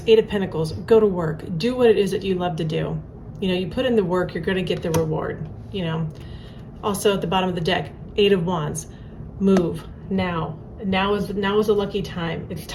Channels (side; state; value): both; identical; correlation 1.00